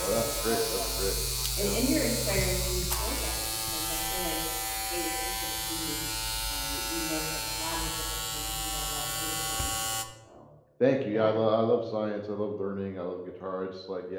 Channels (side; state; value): both; identical; correlation 1.00